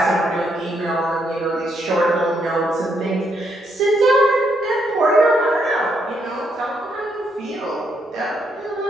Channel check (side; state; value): both; normal; correlation 0.75